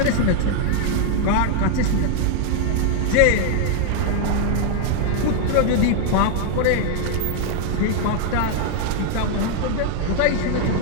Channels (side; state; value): both; different; correlation 0.00